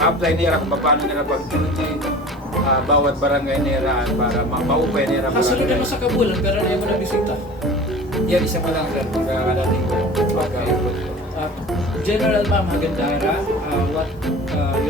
nila kung paano nila pag-duty bawat barangay nila para maupay nila Kasunod barangay. naman sa Kabulan pero na mo na bisita. Yan, isa pa lang sir, magkakadating ko. General Ma'am Hagandara, what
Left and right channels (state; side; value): normal; both; correlation 0.40